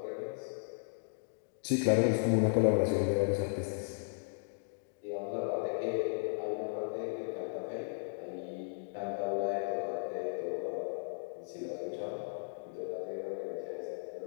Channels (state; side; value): silent; right; digital silence